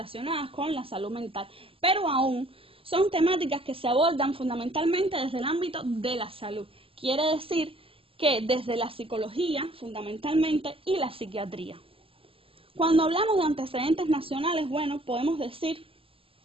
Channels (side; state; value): left; late; 0.26 ms